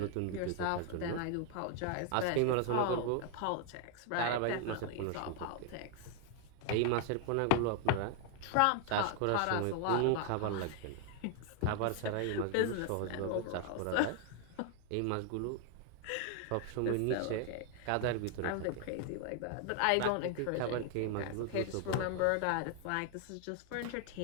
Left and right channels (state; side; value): different; both; correlation 0.00